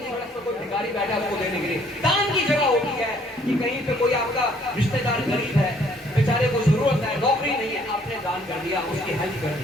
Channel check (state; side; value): normal; both; correlation 0.62